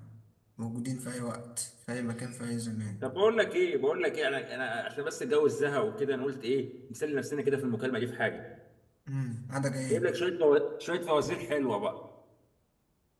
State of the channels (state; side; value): identical; both; correlation 1.00